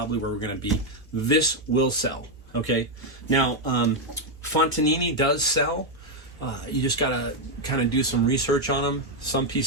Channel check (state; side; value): normal; both; correlation 0.02